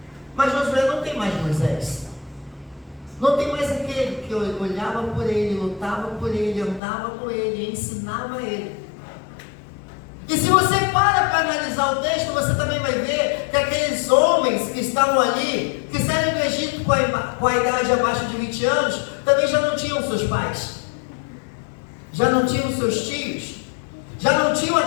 Mas Josué não tem mais Moisés, não tem mais aquele que olhava por ele, lutava por ele, andava com ele, ensinava ele. E se você para analisar o texto, você também vai ver que aqueles homens que estavam ali, que saíram do Egito com a idade abaixo de 20 anos, também já não tinham seus pais, já não tinham seus tios, já não tinham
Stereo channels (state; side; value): drops out; right; at 6.8 s